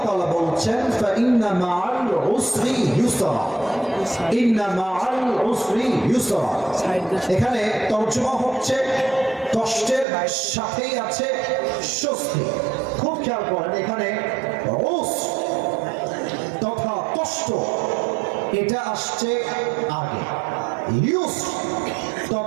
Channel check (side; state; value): left; drops out; at 10.1 s